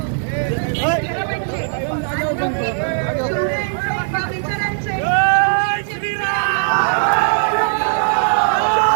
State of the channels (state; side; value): silent; left; 60 dB below the other